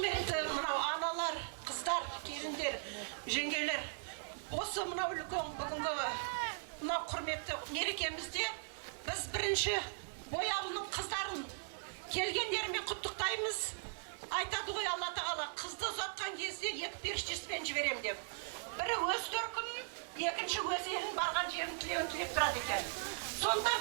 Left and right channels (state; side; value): silent; left; digital silence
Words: мынау аналар, қыздар, келіндер, жеңгелер, осы мынау үлкен бүгінгі мынау құрметті мерекемізде біз бірінші Бояулының қыздарын келгендерімен құттықтаймыз. Айтады ғой Алла тағала, қызды ұзатқан кезде екі періштесімен жіберем деп. Бірі өз төркінін, екінші өз елін барған жерін тілеуін тілеп тұрады екен. Сондықтан